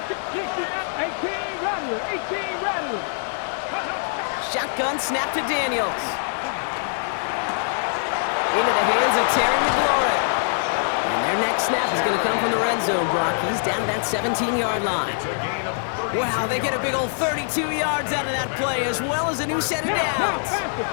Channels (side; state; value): right; silent; 63 dB below the other